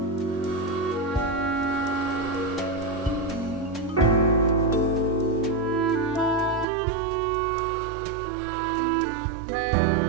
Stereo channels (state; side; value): drops out; left; at 6.7 s